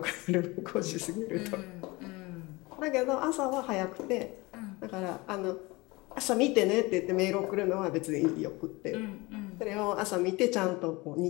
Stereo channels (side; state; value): right; quieter; 23.4 dB